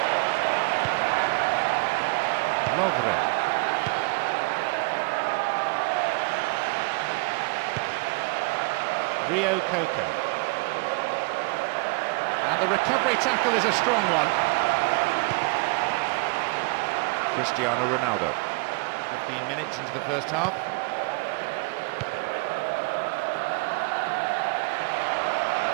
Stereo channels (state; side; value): quieter; left; 29.7 dB